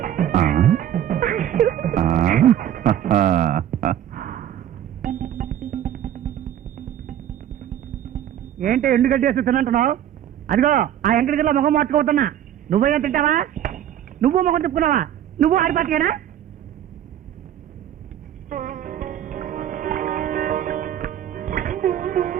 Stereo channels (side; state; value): left; quieter; 10.9 dB